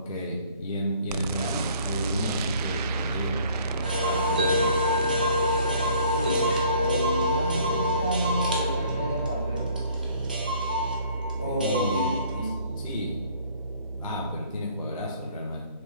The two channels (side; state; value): both; inverted; correlation -0.57